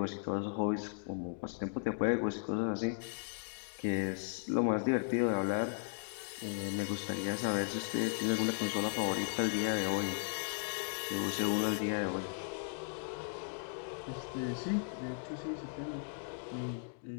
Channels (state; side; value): silent; right; digital silence